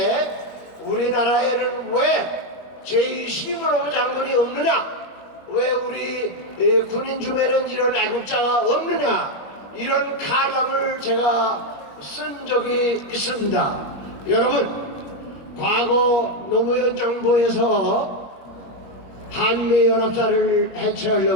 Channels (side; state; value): right; late; 21 ms